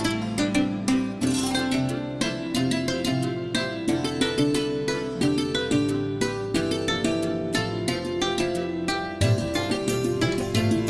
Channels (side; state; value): both; identical; correlation 1.00